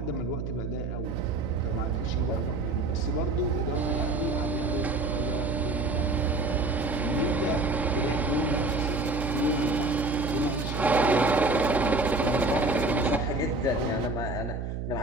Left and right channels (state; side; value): noise; right; hum, 4 dB below the sound